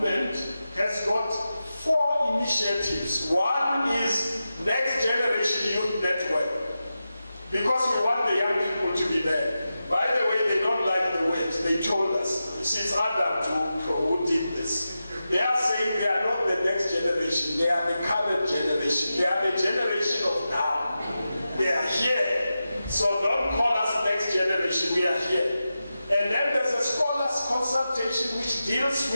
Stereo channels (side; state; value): both; inverted; correlation -0.92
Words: has got 4 initiatives. One is Next Generation Youth Network, because we want the young people to be there. By the way, they don't like the word. They told us. It's Adam who did this. They are saying they are not the next generation. They are the current generation. They are the generation of now. They are here. So don't call us next generation. We are here. And then there's a scholars consultation which deals